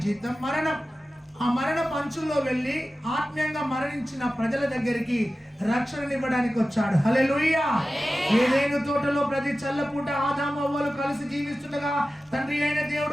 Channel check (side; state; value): both; normal; correlation 0.95